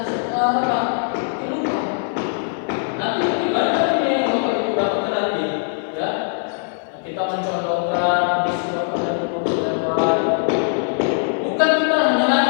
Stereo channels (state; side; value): silent; right; 59 dB below the other